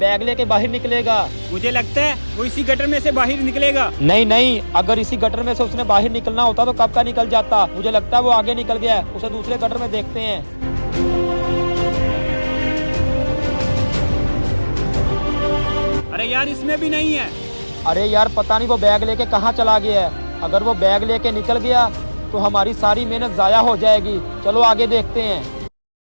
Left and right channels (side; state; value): both; inverted; correlation -1.00